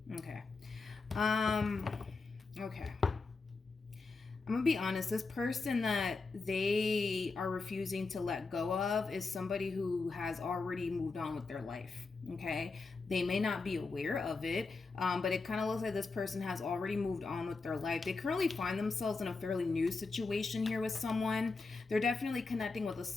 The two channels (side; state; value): right; quieter; 4.1 dB